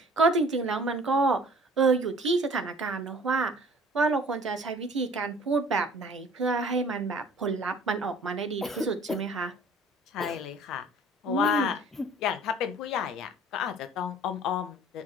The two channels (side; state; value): both; normal; correlation 0.51